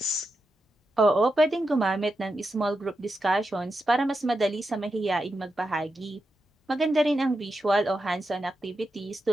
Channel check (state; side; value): normal; both; correlation 0.88